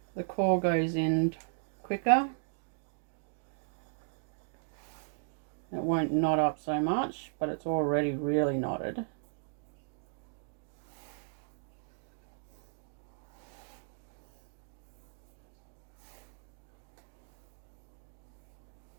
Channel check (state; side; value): silent; left; digital silence